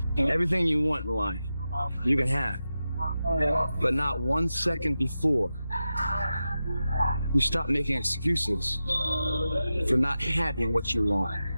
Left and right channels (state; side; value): inverted; both; correlation -0.92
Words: Everything you want in life, you can have. But not 1 second before you stop making excuses for not having what you want.